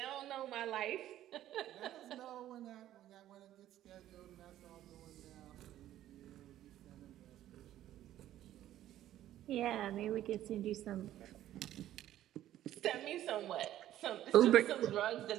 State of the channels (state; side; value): quieter; left; 12.9 dB